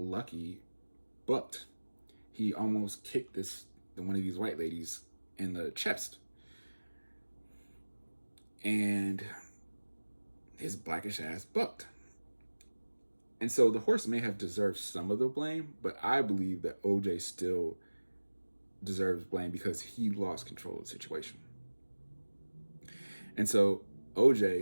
bucked. He almost kicked one of these white ladies in the chest. And his Blackish ass bucked. And so the horse may have deserved some of the blame, but I believe that OJ still deserves blame because he lost control of the situation. And so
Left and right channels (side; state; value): both; inverted; correlation -1.00